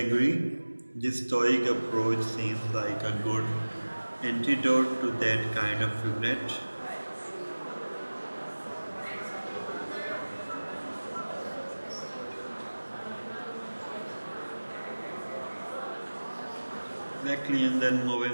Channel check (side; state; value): both; inverted; correlation -1.00